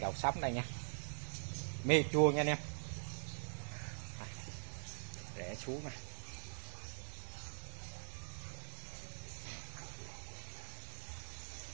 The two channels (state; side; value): silent; left; digital silence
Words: đầu sắm đây nha, me chua nha anh em. Rẽ xuống nè,